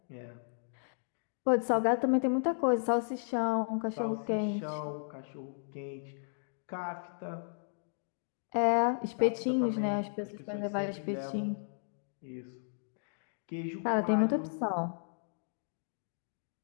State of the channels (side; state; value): right; silent; digital silence